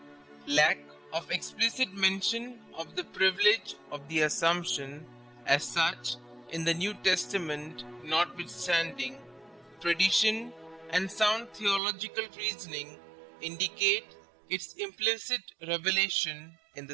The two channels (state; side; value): drops out; left; at 11.8 s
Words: Lack of explicit mention of the privilege of the Assumption as such in the New Testament notwithstanding, tradition and sound theological reasoning indicate its implicit revelation in